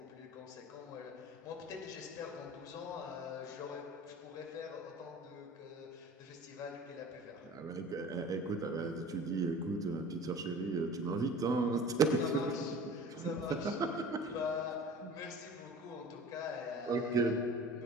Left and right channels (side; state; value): both; normal; correlation 0.42